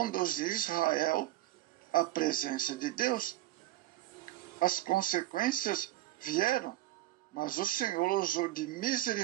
Israel à presença de Deus. As consequências vieram, mas o Senhor usou de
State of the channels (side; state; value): left; quieter; 15.5 dB